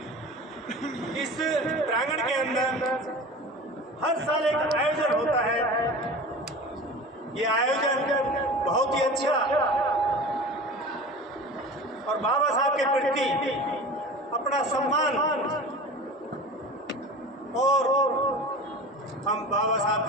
इस प्रांगण के अंदर हर साल एक आयोजन होता है। ये आयोजन बहुत ही अच्छा और बाबा साहब के प्रति अपना सम्मान और हम बाबा साहब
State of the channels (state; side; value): normal; both; correlation 0.35